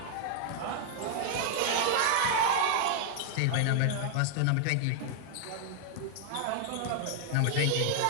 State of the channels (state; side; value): different; both; correlation 0.00